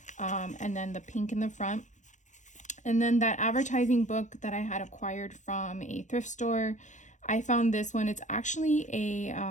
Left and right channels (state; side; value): late; right; 0.35 ms